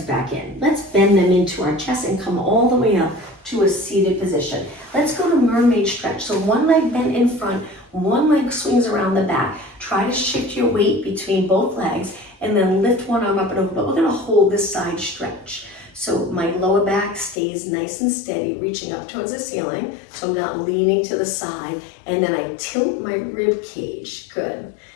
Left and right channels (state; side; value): drops out; right; at 17.4 s